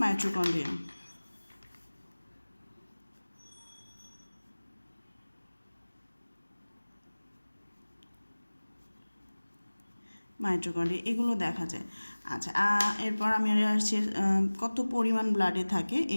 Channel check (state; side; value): inverted; both; correlation -1.00